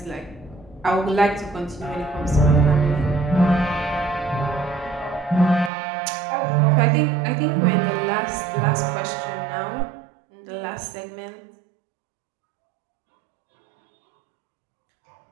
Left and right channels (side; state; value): left; drops out; at 5.7 s